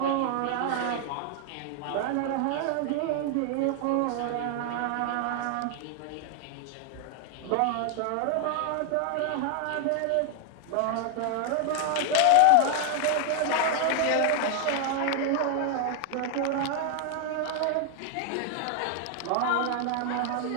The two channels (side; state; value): both; different; correlation 0.00